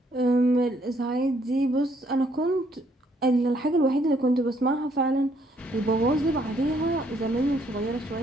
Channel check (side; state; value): both; normal; correlation 0.68